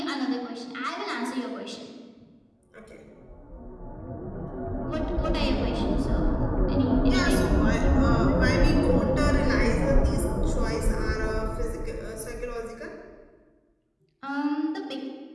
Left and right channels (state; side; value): identical; both; correlation 1.00